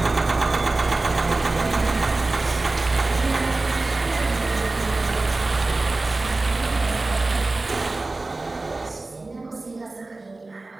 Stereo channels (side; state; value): left; quieter; 3.2 dB